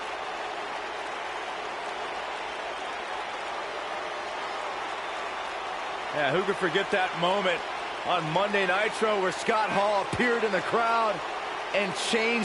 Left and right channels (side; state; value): left; noise; hum, 30 dB below the sound